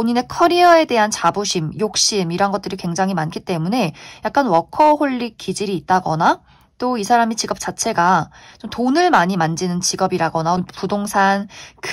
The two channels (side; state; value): both; identical; correlation 1.00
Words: 커리어에 대한 자부심, 욕심 이런 것들이 굉장히 많기 때문에 약간 워커홀릭 기질이 있다거나, 또 이 사람의 직업 자체가 좀 돈을 많이 만지는 직업이라거나 부동산,